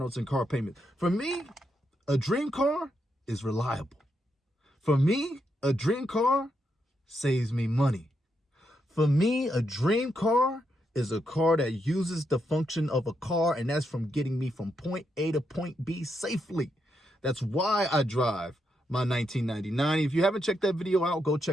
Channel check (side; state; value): both; normal; correlation 0.81